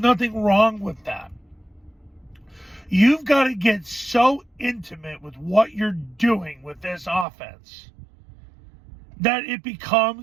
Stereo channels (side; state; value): left; drops out; at 7.2 s